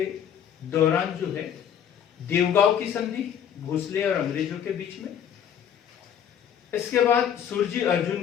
दौरान जो है देवगांव की संधि भोसले और अंग्रेजों के बीच में, इसके बाद सुरजी अर्जुन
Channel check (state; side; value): quieter; right; 8.9 dB